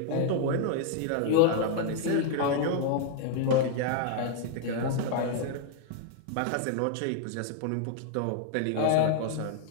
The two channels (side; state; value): both; different; correlation 0.00